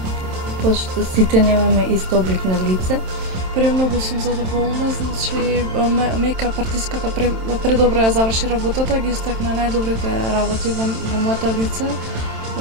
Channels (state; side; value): late; left; 27 ms